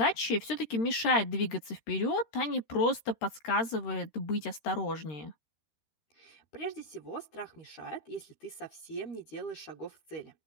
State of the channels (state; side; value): late; right; 13 ms